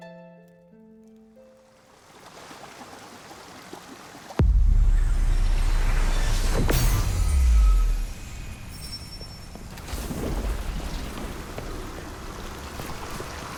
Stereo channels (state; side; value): identical; both; correlation 1.00